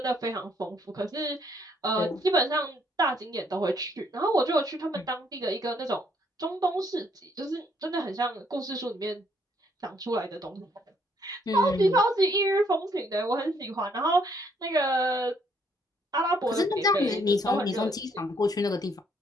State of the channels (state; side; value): normal; both; correlation 0.69